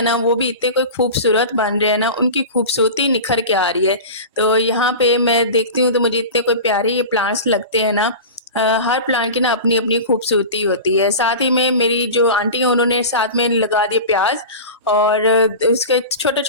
ना वो भी इतने कोई खूबसूरत बन रहे हैं ना, उनकी खूबसूरती निखर के आ रही है। तो यहाँ पे मैं देखती हूँ तो मुझे इतने कोई प्यारे ये प्लांट्स लगते हैं ना। हर प्लांट की ना अपनी अपनी खूबसूरती होती है। साथ ही में मेरी जो आंटी हैं उन्होंने साथ में लगा दिए प्याज, और उसके छोटे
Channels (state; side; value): inverted; both; correlation -0.31